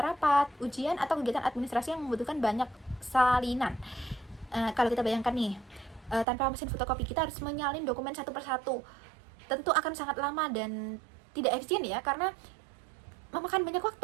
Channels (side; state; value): left; drops out; at 6.2 s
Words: ujian, atau kegiatan administrasi yang membutuhkan banyak salinan. Kalau kita bayangkan nih, tanpa mesin fotokopi kita harus menyalin dokumen satu persatu. Tentu akan sangat lama dan tidak efisien ya, karena memakan banyak